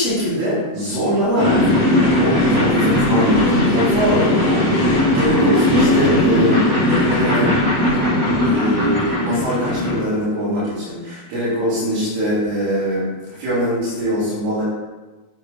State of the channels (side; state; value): left; late; 29 ms